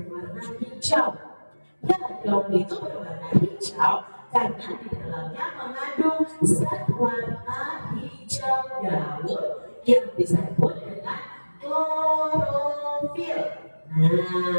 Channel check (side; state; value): both; inverted; correlation -1.00